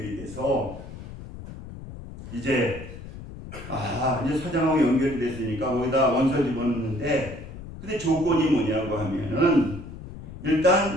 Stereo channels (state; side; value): noise; left; rumble, 13 dB below the sound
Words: 돼서 이제 사장하고 연결이 됐으니까 거기다 원서 집어넣는데, 근데 조건이 뭐냐고 하면은